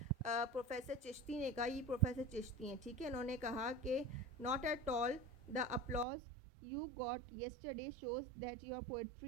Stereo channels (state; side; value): drops out; left; at 6.1 s